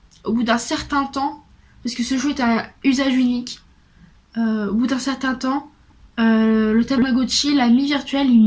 au bout d'un certain temps, parce que ce jeu est un usage unique, au bout d'un certain temps, le Tamagotchi, l'ami virtuel, il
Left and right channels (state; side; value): identical; both; correlation 1.00